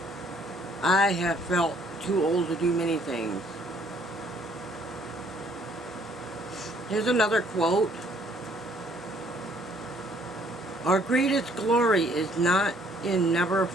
I have felt too old to do many things. Here's another quote. Our greatest glory is not in never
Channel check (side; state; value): both; normal; correlation 0.62